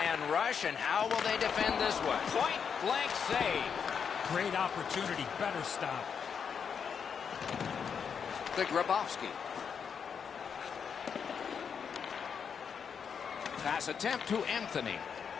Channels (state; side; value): quieter; right; 6.8 dB